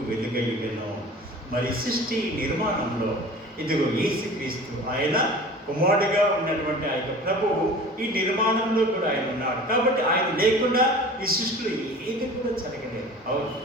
వెలుగయ్యను. మరి సృష్టి నిర్మాణంలో ఇదిగో యేసుక్రీస్తు ఆయన కుమారుడిగా ఉన్నటువంటి ఆ యొక్క ప్రభువు ఈ నిర్మాణంలో కూడా ఆయన ఉన్నాడు. కాబట్టి ఆయన లేకుండా ఈ సృష్టిలో ఏది కూడా జరగలేదు. అవును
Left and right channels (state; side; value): normal; both; correlation 0.41